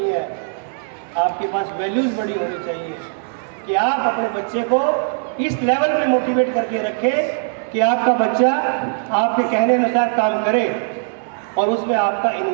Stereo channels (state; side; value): silent; left; 66 dB below the other